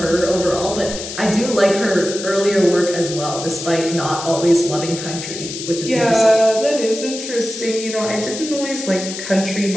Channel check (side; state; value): left; noise; hiss, 8 dB below the sound